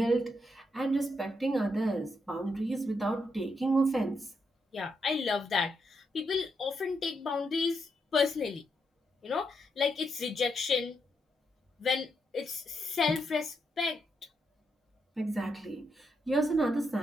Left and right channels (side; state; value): both; normal; correlation 0.81